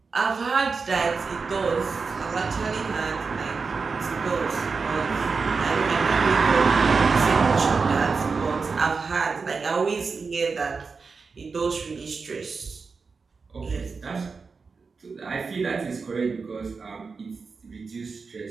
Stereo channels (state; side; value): quieter; left; 4.8 dB